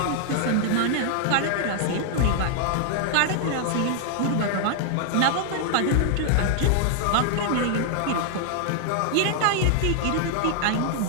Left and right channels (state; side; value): different; both; correlation -0.01